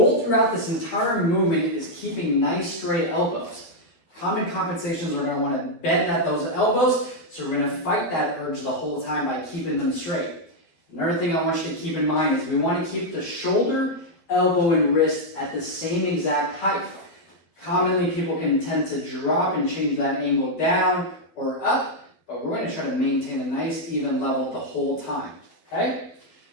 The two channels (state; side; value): late; right; 12 ms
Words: throughout this entire movement is keeping nice straight elbows. Common compensations are going to want to bend at those elbows, so we're going to fight that urge the whole time by keeping them straight. Another thing I want you to keep in mind is we want to keep the shoulder, elbow, and wrist at the same exact height. Commonly, people can tend to drop and change that angle down or up, but we're going to try to maintain a nice even level the whole time, okay?